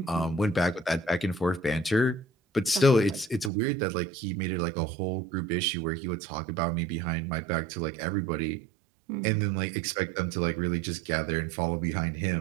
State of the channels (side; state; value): left; drops out; at 3.5 s